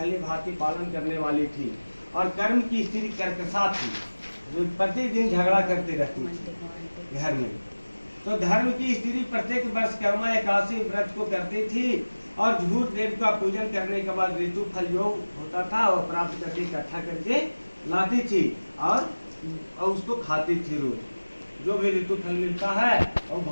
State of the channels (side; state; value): both; inverted; correlation -1.00